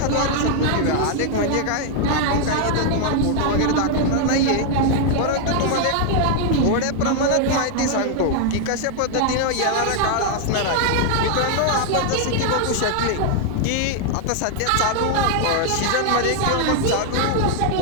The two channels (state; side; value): different; both; correlation 0.00